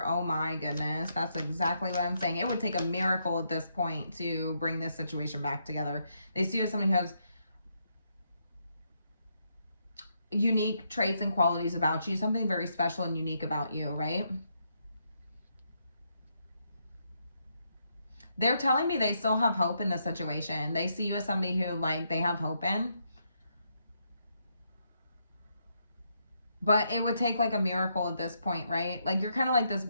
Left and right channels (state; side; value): inverted; both; correlation -0.78